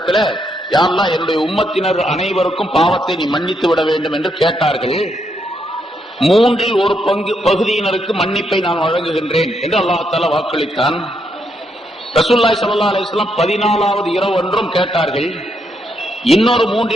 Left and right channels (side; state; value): both; normal; correlation 0.78